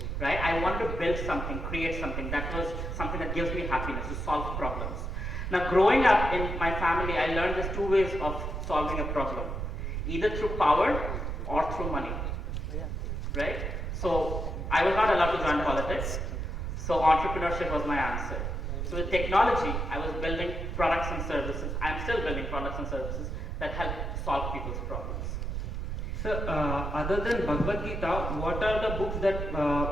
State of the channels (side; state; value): right; noise; rumble, 3 dB below the sound